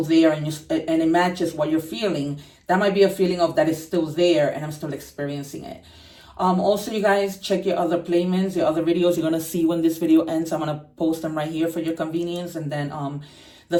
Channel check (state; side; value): identical; both; correlation 1.00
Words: there, and it matches what you're feeling. That might be a feeling of that is still there and I'm still experiencing it. Also, you guys, check your other placements, your other videos. You're going to see when this video ends. I'm going to post them right here for your convenience. And then the